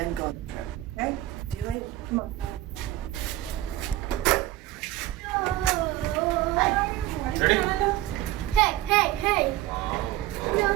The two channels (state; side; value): quieter; left; 15.3 dB